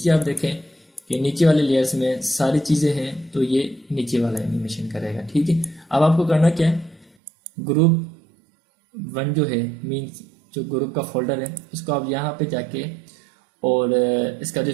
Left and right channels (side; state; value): left; drops out; at 7.1 s